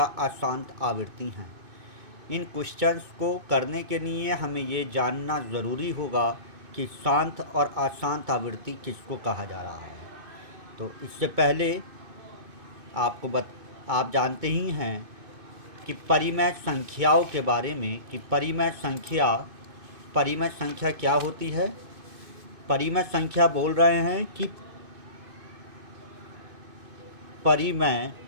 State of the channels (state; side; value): late; left; 2.6 ms